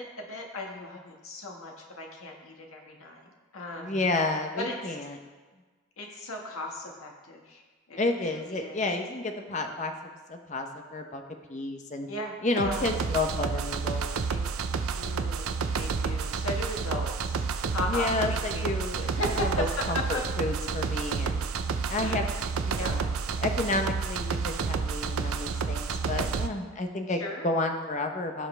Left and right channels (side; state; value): both; normal; correlation 0.38